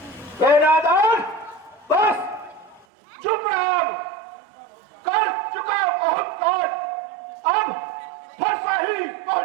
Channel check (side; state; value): left; drops out; at 2.9 s